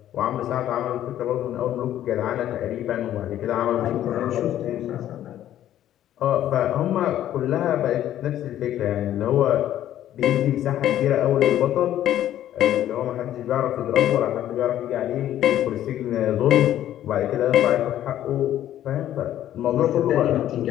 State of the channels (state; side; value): quieter; right; 12.1 dB